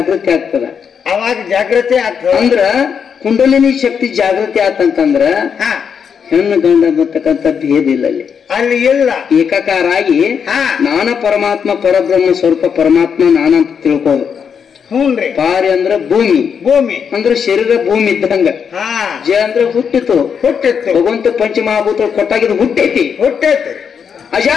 ಆಗ್ತದ ಅವಾಗ ಜಾಗೃತಿ ಆಗ್ತದ ಅಂದ್ರ ಕುಂಡಲಿನಿ ಶಕ್ತಿ ಜಾಗೃತಿ ಆತಂತಂದ್ರ ಹೆಣ್ಣು ಗಂಡ ಬರ್ತಕ್ಕಂಥ ಭೇದ ಇಲ್ಲ ಅಲ್ಲಿ. ಅಲ್ಲಿ ಇಲ್ಲ, ಏಕಾಕಾರ ಆಗಿ ನಾನ ಪರಮಾತ್ಮ ಪರಬ್ರಹ್ಮ ಸ್ವರೂಪ ಪರಮಾತ್ಮ ನಾನಂತ ತಿಳ್ಕೋದು. ಹ್ಞೂನ್ರಿ. ಪಾರಿ ಅಂದ್ರ ಭೂಮಿ, ಭೂಮಿ ಅಂದ್ರೆ ಶರೀರ ಭೂಮಿ ಇದ್ದಂಗ. ಜ ಅಂದ್ರೆ ಹುಟ್ಟಿತು, ಭಗವಂತ ಪಂಚಮಹಾಭೂತ ಕೊಟ್ಟಾಗಿದ್ದು ಹುಟ್ಟೈತಿ.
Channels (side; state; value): right; quieter; 7.0 dB